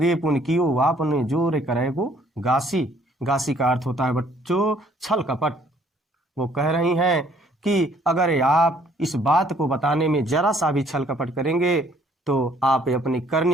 पुन कियो वापन जोर करेगो गासी। गासी का अर्थ होता है बच्चों छल कपट। वो कह रही हैं कि अगर आप इस बात को बताने में जरा सा भी छल कपट करेंगे तो आप अपनी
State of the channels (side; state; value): both; normal; correlation 0.62